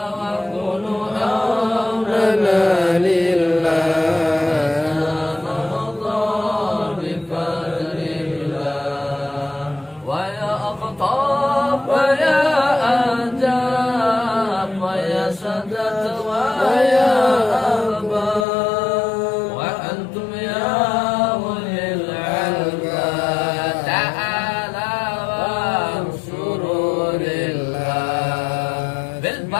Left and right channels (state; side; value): drops out; right; at 18.4 s